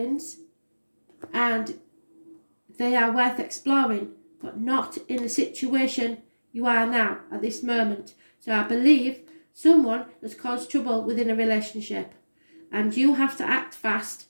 and they are worth exploring. but not in the situation you are now at this moment. So I believe someone has caused trouble within a relationship, and you have to act fast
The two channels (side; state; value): both; inverted; correlation -1.00